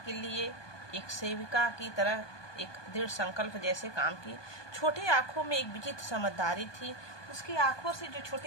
लिए एक सेविका की तरह एक दृढ़ संकल्प जैसे काम की। छोटी आंखों में एक विचित्र समझदारी थी। उसकी आंखों से जो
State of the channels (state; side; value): late; right; 1.2 ms